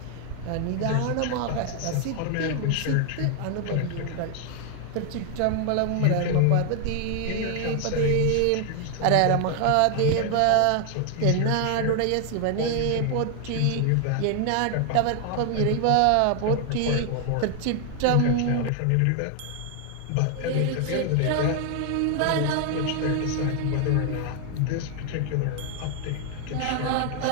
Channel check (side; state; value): both; different; correlation 0.00